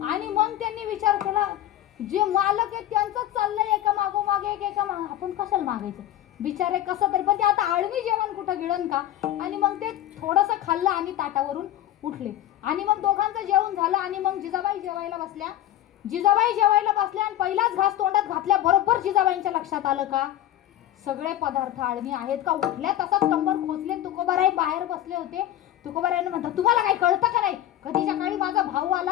आणि मग त्यांनी विचार केला जे मालक आहेत त्यांचंच चाललंय एका मागोमागे एका आपण कशाला मागायचं बिचारे कसं तरी. पण ते आता आळणी जेवण कुठं गिळण का. आणि मग ते थोडंसं खाल्लं आणि ताटावरून उठले. आणि मग दोघांचं जेवण झालं आणि मग जिजाबाई जेवायला बसल्या. जिजाबाई जेवायला बसल्या आणि पहिलाच घास तोंडात घातल्या बरोबर जिजाबाईंच्या लक्षात आलं का सगळे पदार्थ आळणी आहेत का. उठल्या तसाच कंबर खोचले. तुकोबाराई बाहेर बसले होते. तुकोबारायांना म्हणतात तुम्हाला काही कळतं का नाही, कधीच्या काळी माझा भाऊ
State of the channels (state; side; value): quieter; right; 12.7 dB